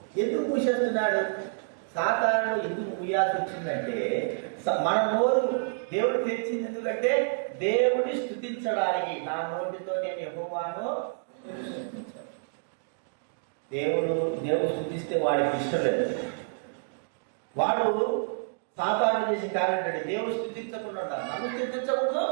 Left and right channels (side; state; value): left; silent; digital silence